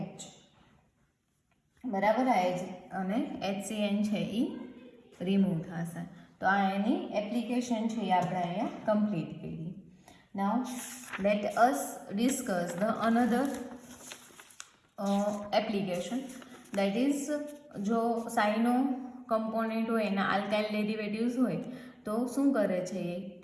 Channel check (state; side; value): identical; both; correlation 1.00